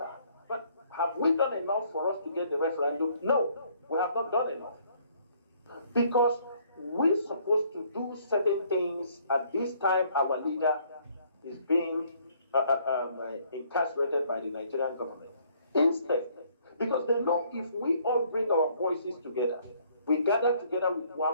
But have we done enough for us to get the referendum? No, we have not done enough. Because we're supposed to do certain things. At this time, our leader is being incarcerated by the Nigerian government. Instead, because they know if we all bring our voices together, we gather together with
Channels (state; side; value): inverted; both; correlation -0.64